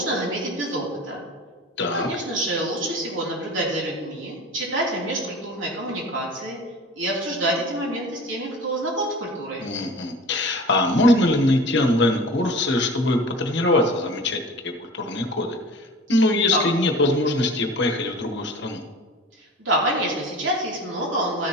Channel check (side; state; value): both; normal; correlation 0.38